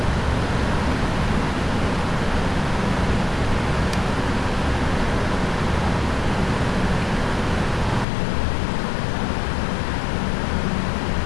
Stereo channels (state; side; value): drops out; right; at 8.1 s